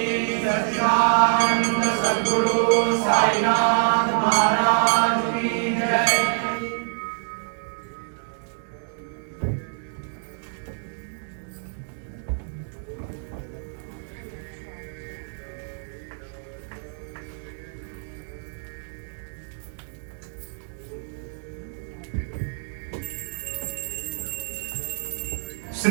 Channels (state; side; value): silent; left; digital silence